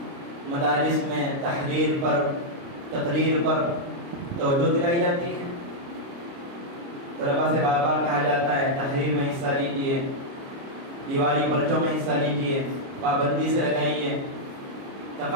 مدارس میں تحریر پر، تقریر پر توجہ دلائی جاتی ہے، طلباء سے بار بار کہا جاتا ہے تحریر میں حصہ لیجیے، دیوالی پرچوں میں حصہ لیجیے، پابندی سے لگائیے،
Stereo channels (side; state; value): left; late; 29 ms